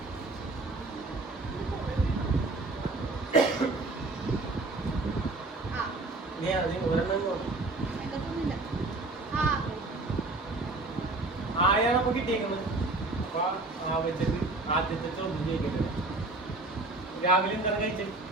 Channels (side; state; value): left; quieter; 3.1 dB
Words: ആയാണ് അപ്പൊ കിട്ടിയേക്കുന്നത്. അപ്പൊ ആ വെച്ചിട്ട് ആദ്യത്തെ ചോദ്യം ചോദിക്കട്ടെ. രാവിലെ എന്താണ് കഴിച്ചത്?